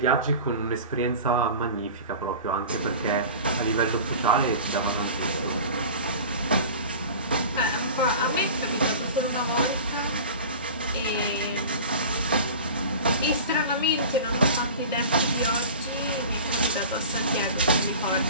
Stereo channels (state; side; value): inverted; both; correlation -0.37